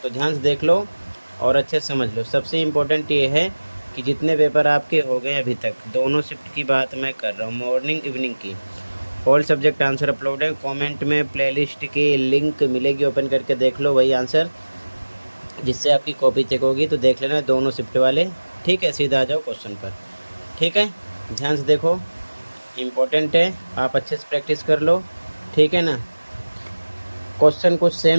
तो ध्यान से देख लो और अच्छे से समझ लो। सबसे इम्पोर्टेंट ये है कि जितने पेपर आपके हो गए अभी तक, दोनों शिफ्ट की बात मैं कर रहा हूँ, मॉर्निंग इवनिंग की, ऑल सब्जेक्ट आंसर अपलोड है। कमेंट में प्लेलिस्ट की लिंक मिलेगी, ओपन करके देख लो वही आंसर, जिससे आपकी कॉपी चेक होगी। तो देख लेना दोनों शिफ्ट वाले। ठीक है, सीधा आ जाओ क्वेश्चन पर। ठीक है, ध्यान से देखो, इम्पोर्टेंट है, आप अच्छे से प्रैक्टिस कर लो। ठीक है ना, क्वेश्चन कुछ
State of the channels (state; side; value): inverted; both; correlation -1.00